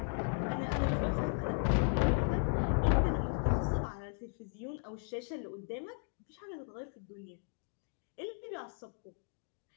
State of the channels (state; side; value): silent; right; 54 dB below the other